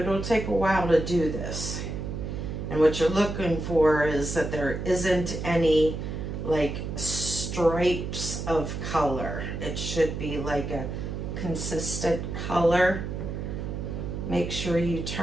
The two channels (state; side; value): noise; right; hum, 5 dB below the sound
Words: take a while to do this. And what you're looking for is that there isn't any like stripes of color. It should be like a consistent color. Make sure you